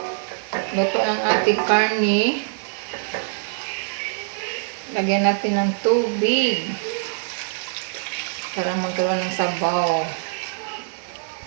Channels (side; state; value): left; silent; digital silence